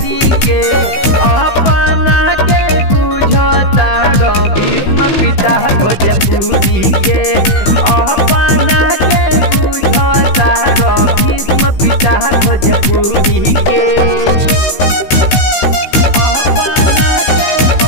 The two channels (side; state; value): right; late; 15 ms